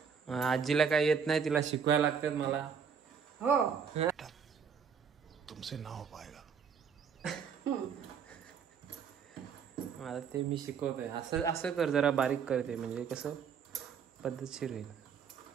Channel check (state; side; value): quieter; left; 6.8 dB